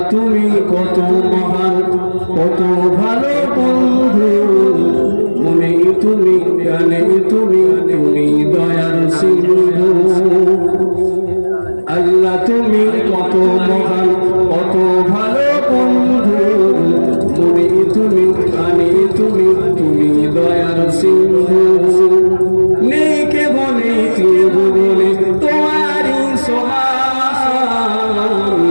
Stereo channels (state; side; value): inverted; both; correlation -1.00